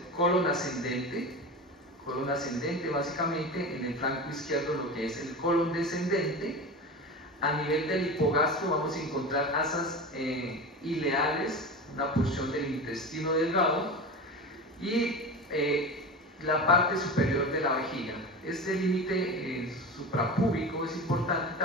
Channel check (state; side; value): normal; both; correlation 0.28